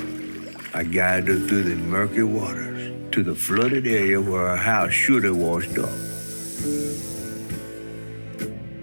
I guided her through the murky waters to the flooded area where her house should have washed up.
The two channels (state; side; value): inverted; both; correlation -1.00